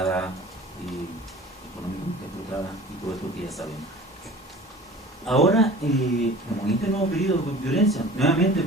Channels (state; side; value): normal; both; correlation 0.42